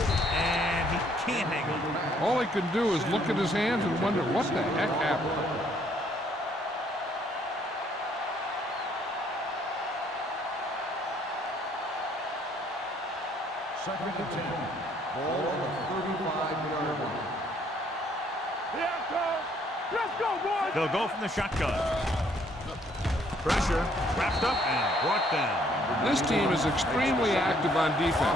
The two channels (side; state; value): both; normal; correlation 0.65